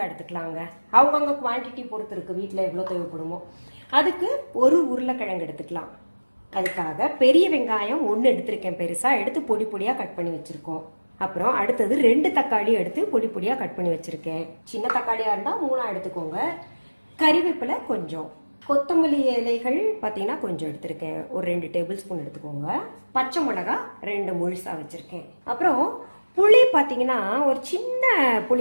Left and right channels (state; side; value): inverted; both; correlation -1.00